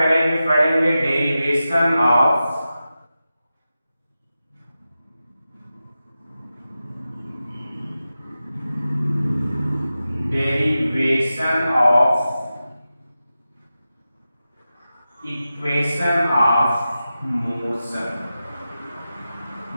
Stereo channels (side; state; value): both; inverted; correlation -0.93